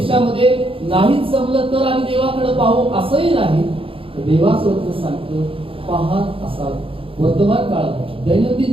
नाहीच जमलं तर आम्ही देवाकडे पाहू असंही नाही. देवाचं वचन सांगतो पाहत असाल. वर्तमान काळात दैनंदिन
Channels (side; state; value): left; late; 0.26 ms